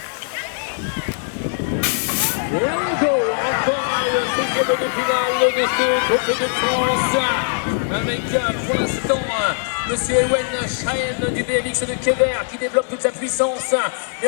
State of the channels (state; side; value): silent; right; 65 dB below the other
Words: Encore le 16e de finale de ce Tour de France avec pour l'instant Monsieur Ewen Schaen du BMX de Kever qui développe toute sa puissance. Mais